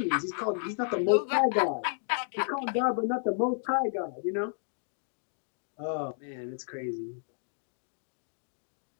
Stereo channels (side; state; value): right; silent; digital silence